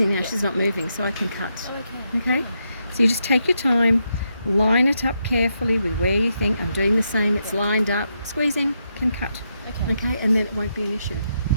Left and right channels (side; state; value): both; inverted; correlation -0.82